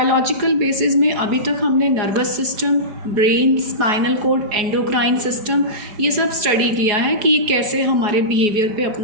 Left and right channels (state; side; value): late; left; 4.7 ms